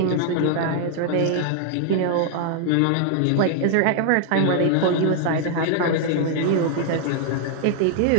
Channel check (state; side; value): different; both; correlation 0.00